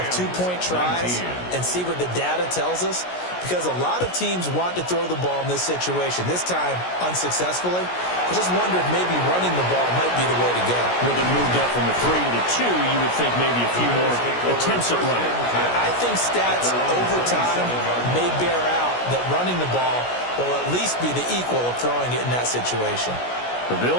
2-point tries and see what the data tells us, because a lot of teams want to throw the ball in this situation, this time unsuccessfully. I just wonder if maybe running the ball might be the way to go. With it moved up from the 3 to the 2, you would think maybe a few more attempts at running. I think stats over time may bear out that running the ball will at least be the equal of throwing it in that situation. The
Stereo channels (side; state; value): right; late; 17 ms